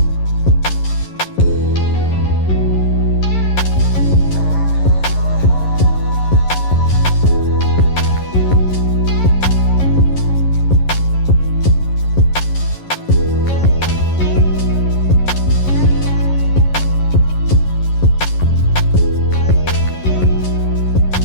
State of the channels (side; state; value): right; late; 11 ms